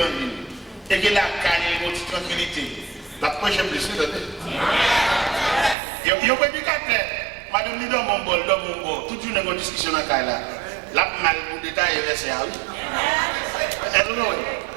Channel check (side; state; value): left; drops out; at 5.8 s